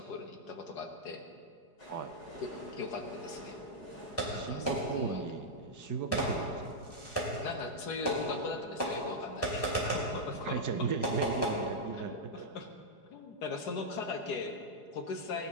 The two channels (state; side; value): late; right; 4.8 ms